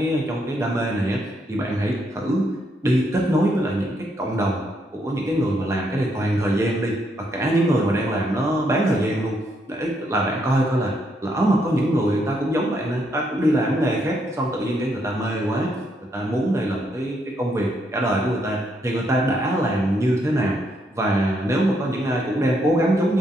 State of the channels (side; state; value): both; normal; correlation 0.75